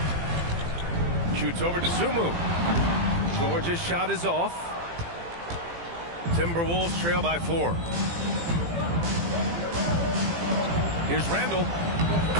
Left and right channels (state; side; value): late; left; 18 ms